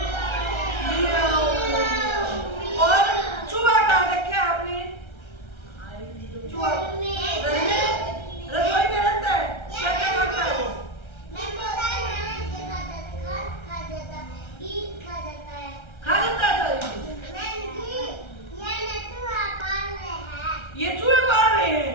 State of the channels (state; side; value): late; right; 1.3 ms